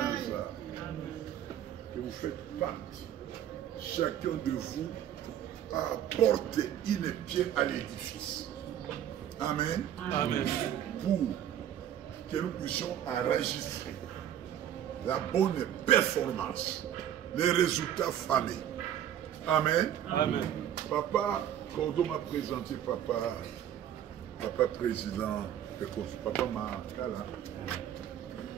hasard que vous faites partie. Chacun de vous apporte une pierre à l'édifice. Amen. Amen. Pour que nous puissions enregistrer la bonne performance, les résultats famés. Amen. Amen. Papa Cordo m'a présenté papa président de Papa Makala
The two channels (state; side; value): quieter; left; 10.6 dB